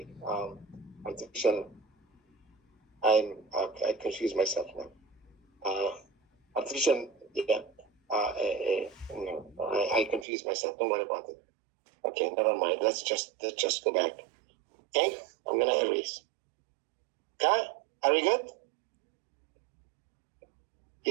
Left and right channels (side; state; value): left; drops out; at 10.2 s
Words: I confuse myself now. Artificial. Yeah. No, I confuse myself. Don't worry about it. Okay, never mind. Let's just go back. Okay, I'm gonna erase. Okay, are we good?